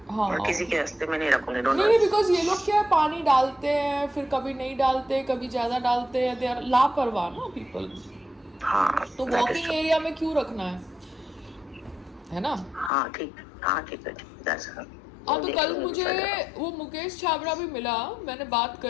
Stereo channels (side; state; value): right; drops out; at 12.9 s